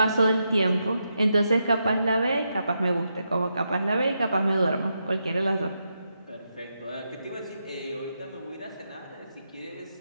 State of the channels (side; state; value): both; inverted; correlation -0.84